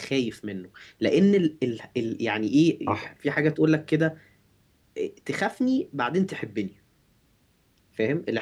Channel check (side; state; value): both; identical; correlation 1.00